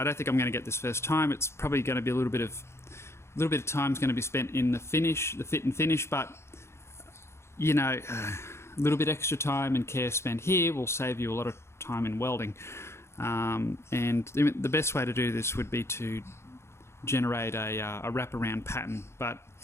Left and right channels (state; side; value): late; right; 0.13 ms